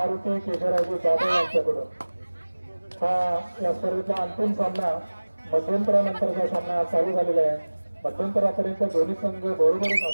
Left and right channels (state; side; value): inverted; both; correlation -1.00